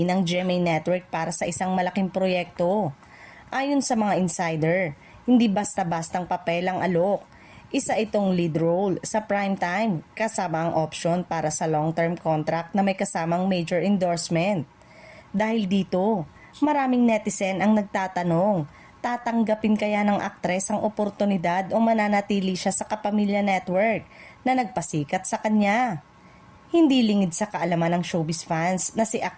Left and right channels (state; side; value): identical; both; correlation 1.00